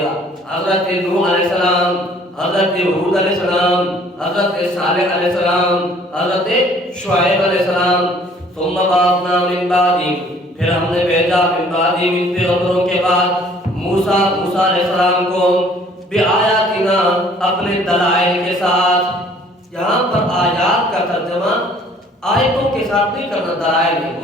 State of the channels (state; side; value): normal; both; correlation 0.56